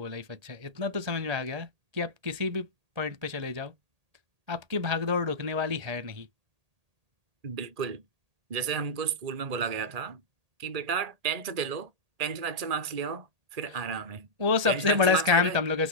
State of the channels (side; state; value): left; late; 1.8 ms